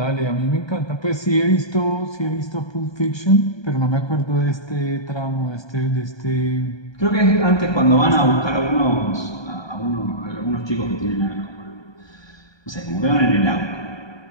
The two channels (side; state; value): right; late; 1.2 ms